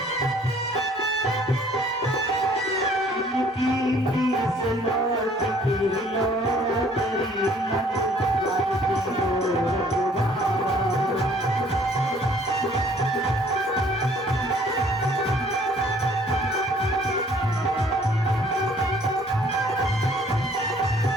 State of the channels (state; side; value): normal; both; correlation 0.58